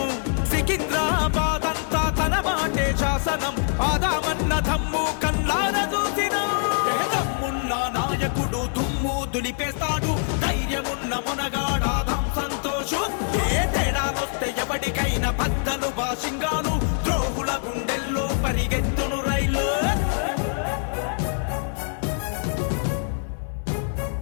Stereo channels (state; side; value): silent; right; 58 dB below the other